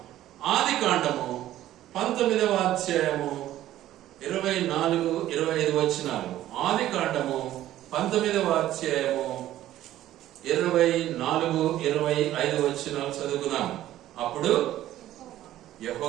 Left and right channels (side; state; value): left; quieter; 13.5 dB